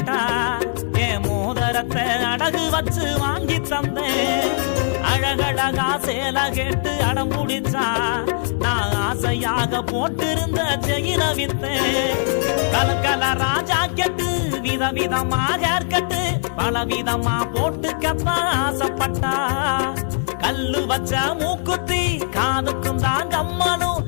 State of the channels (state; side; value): silent; right; digital silence